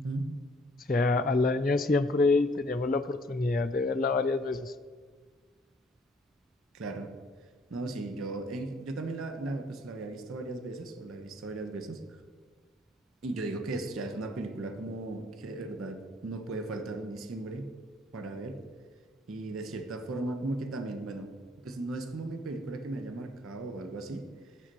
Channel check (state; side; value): normal; both; correlation 0.61